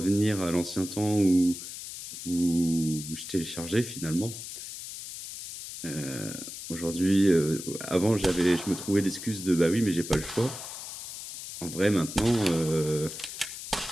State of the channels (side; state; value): left; noise; hiss, 10 dB below the sound